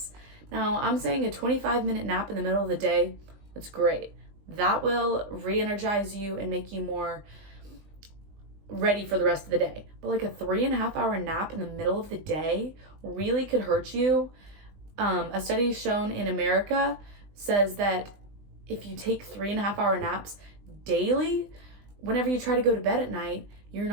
Now, I'm saying a 25-minute nap in the middle of the day, that's great. That will re-energize you and make you more ready for the rest of the day. But a 3.5-hour nap in the middle of the day really could hurt you. A study shown in America says that if you take 3.5-hour naps daily, whenever you try to go to bed at night, you're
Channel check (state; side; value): late; left; 20 ms